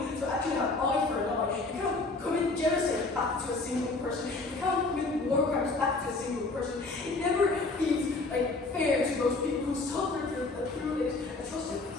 to actually have eye for an eye. You can't commit genocide back to a single person. You can't commit war crimes back to a single person. It never feels fair to those people who suffer through these atrocities.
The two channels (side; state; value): right; quieter; 3.4 dB